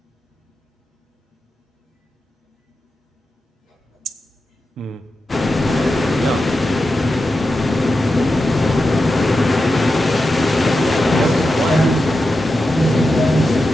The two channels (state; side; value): normal; both; correlation 0.90